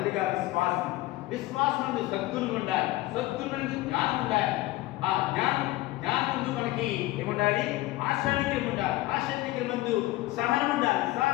విశ్వాసం నందు సద్గుణం ఉండాలి, సద్గుణం నందు జ్ఞానం ఉండాలి, ఆ జ్ఞానం నందు మనకి ఏముండాలి, ఆశానికరం ఉండాలి, ఆశానికరం నందు సహనం ఉండాలి,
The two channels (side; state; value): right; quieter; 18.2 dB